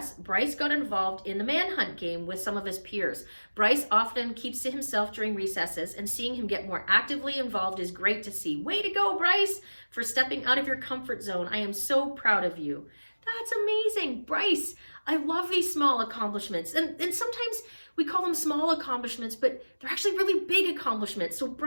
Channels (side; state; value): both; inverted; correlation -1.00